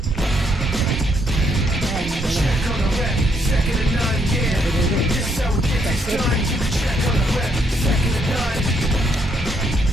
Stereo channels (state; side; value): normal; both; correlation 0.73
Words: Check on the rep, second to none, yeah. This is how we get this done. You can check on the rep, second to none.